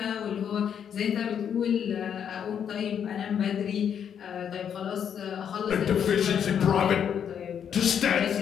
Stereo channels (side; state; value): right; quieter; 8.3 dB